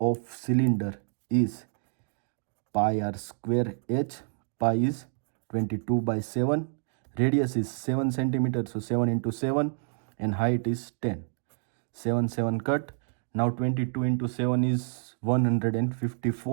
cylinder is pi r square h. Pi is 22/7, radius is 7 centimetre, so 7 into 7 and height is 10. 7 7 cut. Now 22 into 7 is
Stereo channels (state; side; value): silent; left; digital silence